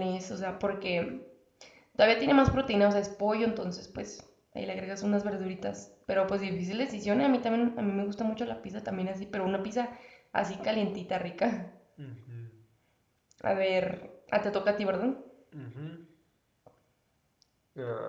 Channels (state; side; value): identical; both; correlation 1.00